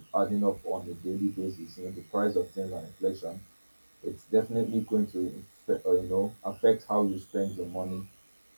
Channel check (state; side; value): inverted; both; correlation -1.00